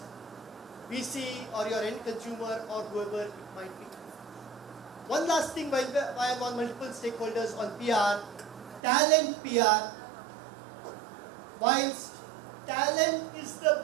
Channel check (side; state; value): left; drops out; at 8.8 s